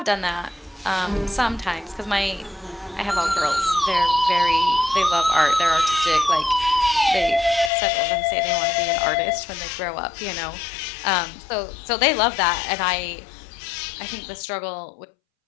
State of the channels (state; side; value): drops out; right; at 7.7 s